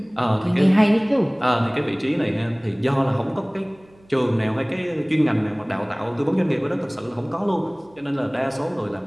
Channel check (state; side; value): noise; right; hum, 29 dB below the sound